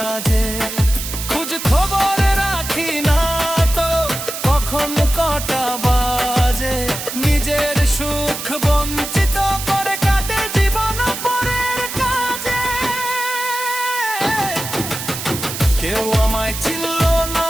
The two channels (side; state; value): right; noise; hiss, 7 dB below the sound